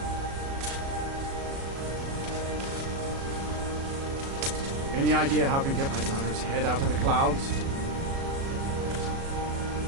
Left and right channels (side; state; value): left; late; 36 ms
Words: Any idea how I can get my daughter's head out of the clouds?